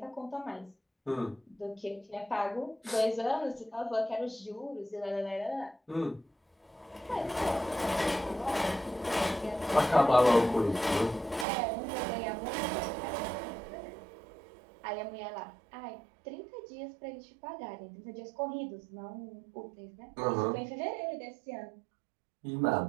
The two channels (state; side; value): drops out; left; at 11.5 s